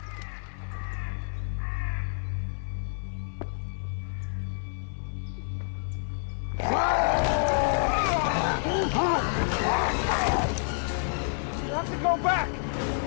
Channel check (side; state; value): right; silent; 59 dB below the other